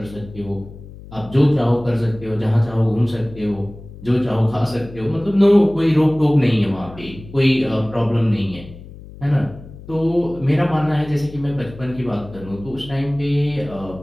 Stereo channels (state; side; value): noise; left; hum, 17 dB below the sound